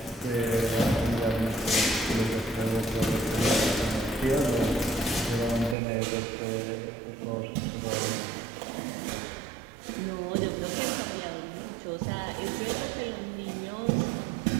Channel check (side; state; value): left; drops out; at 5.8 s